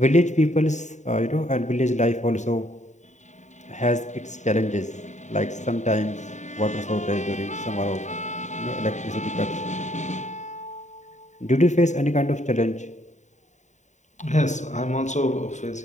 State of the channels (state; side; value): late; right; 0.34 ms